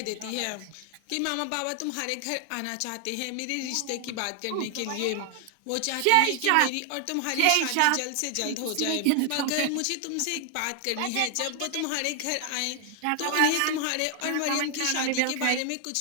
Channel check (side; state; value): both; different; correlation 0.00